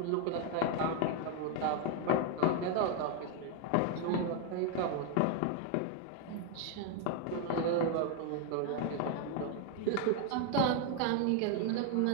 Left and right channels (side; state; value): both; different; correlation 0.01